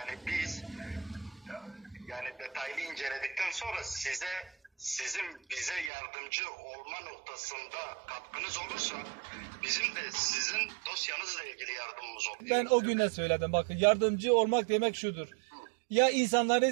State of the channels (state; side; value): drops out; left; at 5.9 s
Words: biz detaylı inceledikten sonra sizin bize yardımcı olma noktasında katkınız olursa bizim de sizin dosyanızla ilgili yardımımız olur. Ben o gün de söyledim, bakın, yardımcı olmak demek şudur. Ya